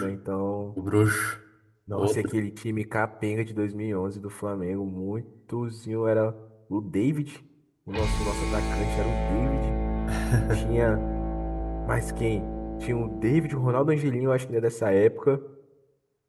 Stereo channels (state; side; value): identical; both; correlation 1.00